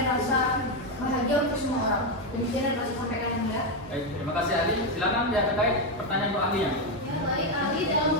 rasa bahagia untuk semua orang. Demikian yang dapat sampaikan yang mulia. Baik, terima kasih ahli. Silakan pihak terkait pertanyaan untuk ahlinya. Ya, baik, ahli dalam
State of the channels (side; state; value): both; normal; correlation 0.06